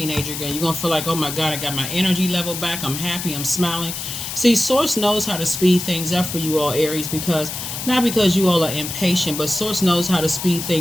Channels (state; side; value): noise; left; hiss, 6 dB below the sound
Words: again. You're going to feel like, oh my God, I got my energy level back. I'm happy. I'm smiling. See, Source knows how to speed things up for you all, Aries, not because you all are impatient, but Source knows how to speed